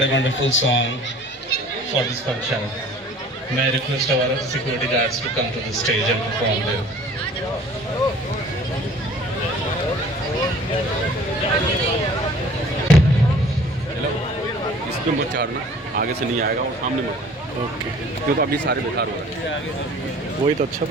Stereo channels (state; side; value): normal; both; correlation 0.49